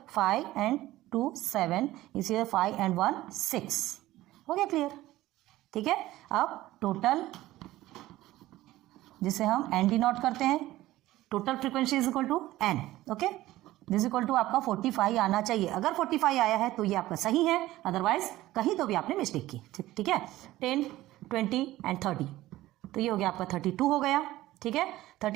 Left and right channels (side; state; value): left; quieter; 16.2 dB